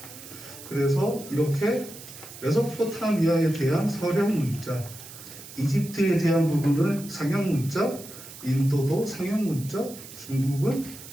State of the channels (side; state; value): right; noise; hiss, 15 dB below the sound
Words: 그래서 이렇게 메소포타미아에 대한 서령 문자, 이집트에 대한 부분을 상형 문자, 인도도 상형 문자, 중국은